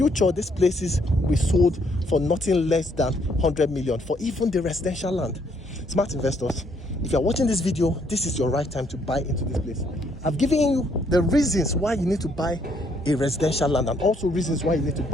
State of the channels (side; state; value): both; normal; correlation 0.69